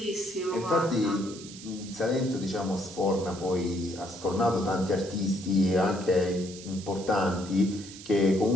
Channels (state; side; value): noise; right; hiss, 15 dB below the sound